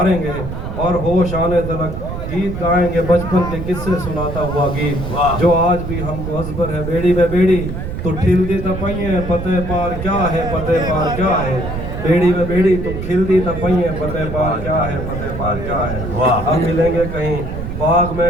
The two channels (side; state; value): right; noise; rumble, 6 dB below the sound